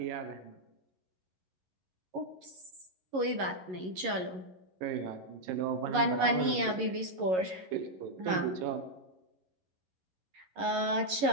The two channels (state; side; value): late; left; 11 ms